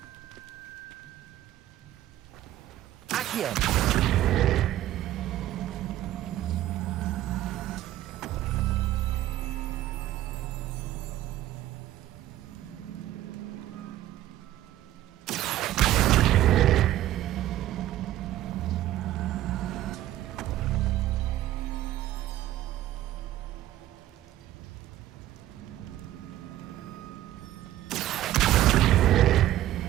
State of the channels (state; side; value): quieter; left; 13.9 dB